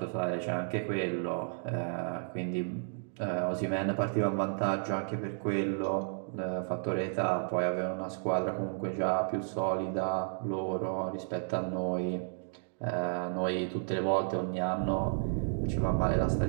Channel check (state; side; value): silent; left; digital silence